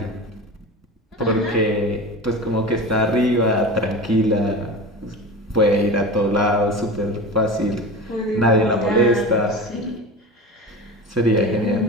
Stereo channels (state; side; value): normal; both; correlation 0.30